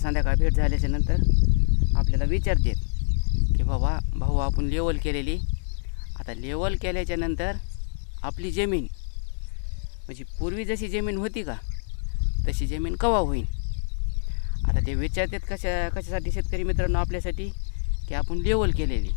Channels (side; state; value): right; silent; digital silence